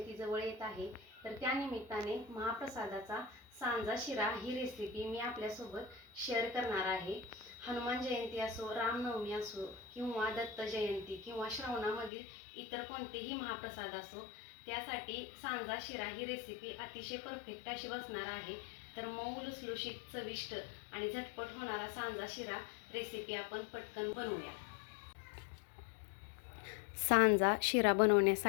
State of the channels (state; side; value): drops out; right; at 12.1 s